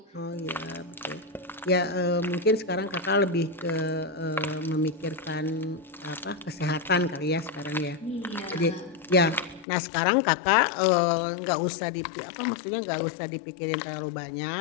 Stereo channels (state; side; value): drops out; right; at 9.7 s